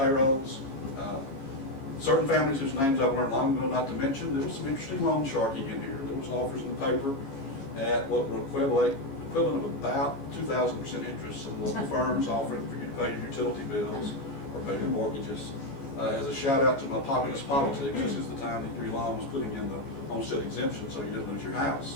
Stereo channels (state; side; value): late; right; 15 ms